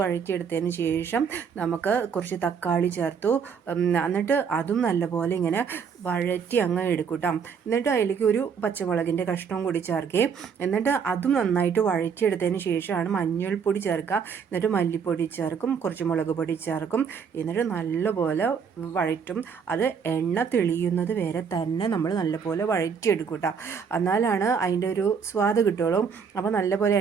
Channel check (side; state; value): left; quieter; 6.5 dB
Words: ശേഷം നമുക്ക് കുറച്ച് തക്കാളി ചേർത്തു. എന്നിട്ട് അതും നല്ലപോലെ ഇങ്ങനെ വഴറ്റി അങ്ങ് എടുക്കൂട്ടോ. എന്നിട്ട് അതിലേക്ക് ഒരു പച്ചമുളകിൻ്റെ കഷ്ണവും കൂടി ചേർക്കുകയും എന്നിട്ട് അതും നന്നായിട്ട് വഴറ്റിയെടുത്തതിന് ശേഷമാണ് മഞ്ഞൾപ്പൊടി ചേർക്കുക. എന്നിട്ട് മല്ലിപ്പൊടി ചേർക്കും, കുറച്ച് മുളക് പൊടി ചേർക്കും. എന്നിട്ട് നല്ലപോലെ വഴറ്റും. അത് എണ്ണ തെളിയുന്നത് വരെ തന്നെ നമ്മൾ നല്ലപോലെ വഴറ്റിയെടുക്കും കേട്ടോ. എന്നാലാണ് അതിൻ്റെ ഒരു സ്വാദ് കിട്ടുള്ളൂ. അപ്പോൾ നല്ലപോലെ